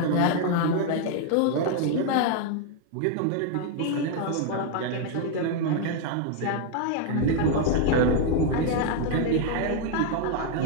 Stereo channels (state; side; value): different; both; correlation 0.00